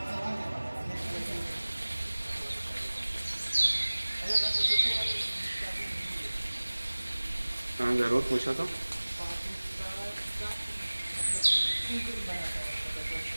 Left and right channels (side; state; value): both; inverted; correlation -1.00